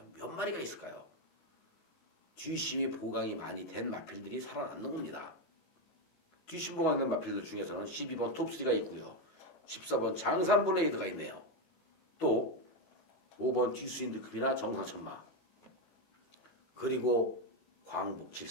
몇 마리가 있을까요? 뒷심이 보강이 많이 된 마필들이 살아남는 겁니다. 뒷심 보강된 마필들 중에서는 12번 톱3가 있고요. 14번 장산 블레이드가 있네요. 또 5번 듀스인드급이나 정상천마, 그리고 광복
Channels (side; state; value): right; late; 19 ms